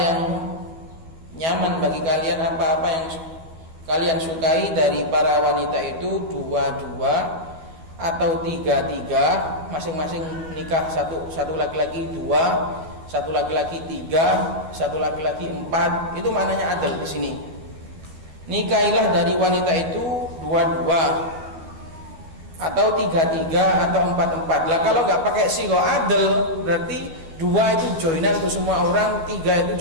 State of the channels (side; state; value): left; late; 12 ms